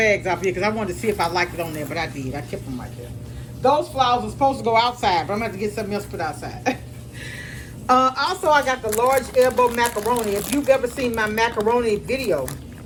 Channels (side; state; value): both; identical; correlation 1.00